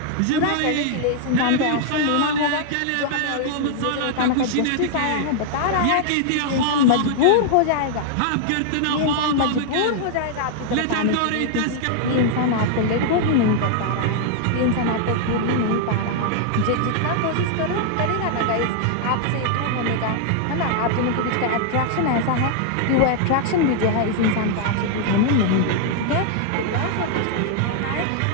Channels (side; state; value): both; different; correlation 0.00